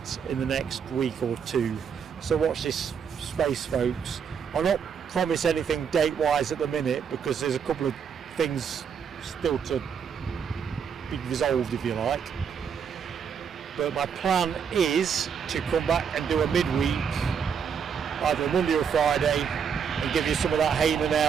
in the next week or two. So watch this space, folks. I'll not promise anything date-wise at the minute because there's a couple of things still to be resolved, if you like. But my plan is to come back and do a midweek, either Monday or Friday, and give you some of that Hainan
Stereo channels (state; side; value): quieter; left; 7.1 dB